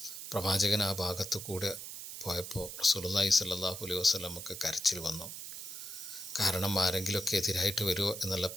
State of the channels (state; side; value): noise; right; hiss, 9 dB below the sound